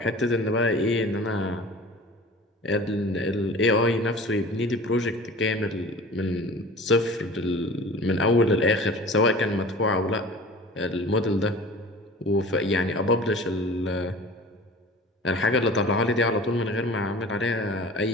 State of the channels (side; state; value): both; normal; correlation 0.41